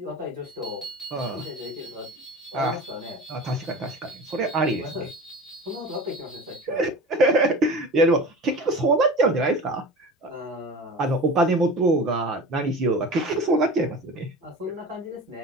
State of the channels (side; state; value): both; normal; correlation 0.34